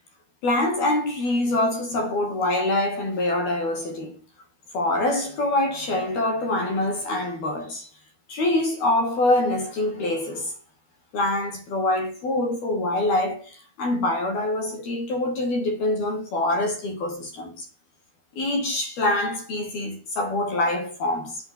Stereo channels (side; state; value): right; late; 12 ms